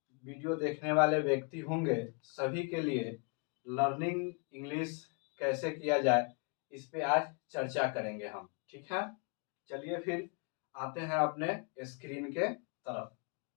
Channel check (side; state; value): right; quieter; 36.5 dB